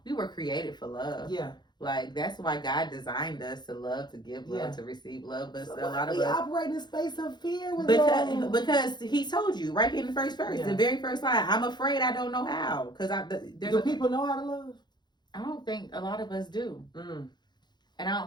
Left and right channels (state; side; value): late; right; 0.21 ms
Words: were created for love. Yeah. Like, that's why God designed us to love, to give love, to receive love. But so a lot of we us operate in a space of fear with because he told you right in the first verse, the very first line. I'm afraid I don't know how. Do people know how to love? I don't think a lot of us do, and I